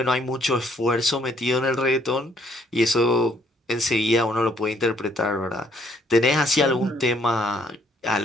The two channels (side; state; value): both; normal; correlation 0.66